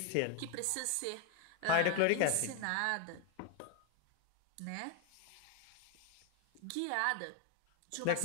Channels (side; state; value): both; different; correlation 0.01